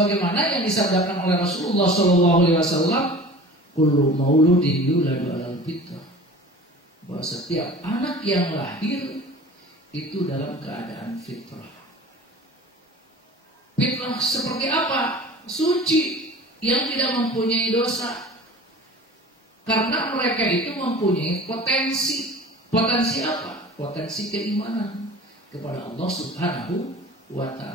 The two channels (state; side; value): normal; both; correlation 0.41